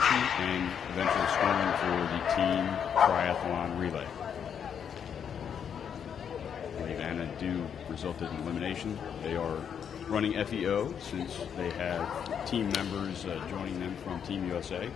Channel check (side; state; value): right; quieter; 7.9 dB